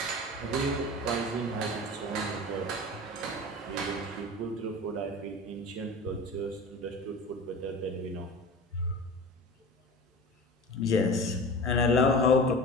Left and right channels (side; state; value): both; normal; correlation 0.35